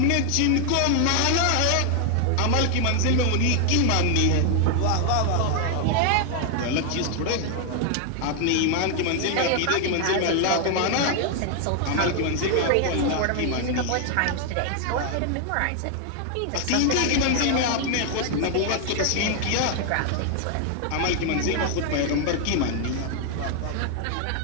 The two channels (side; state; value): both; different; correlation 0.00